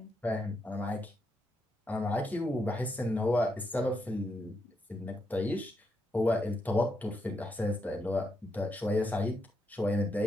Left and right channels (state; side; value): normal; both; correlation 0.81